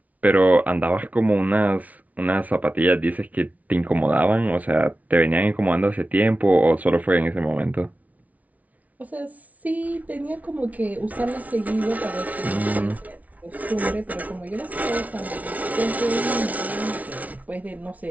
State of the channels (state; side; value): late; left; 0.071 ms